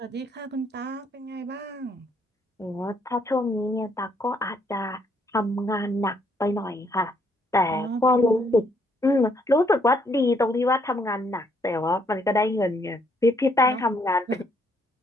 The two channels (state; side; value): normal; both; correlation 0.70